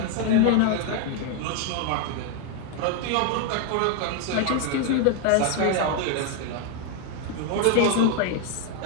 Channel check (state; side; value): different; both; correlation 0.00